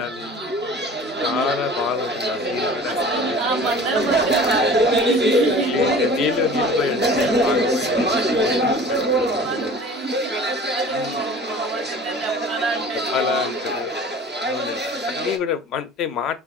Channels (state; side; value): normal; both; correlation 0.43